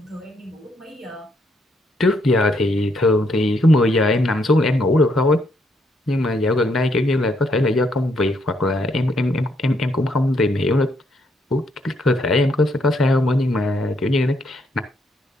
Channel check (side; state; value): both; normal; correlation 0.74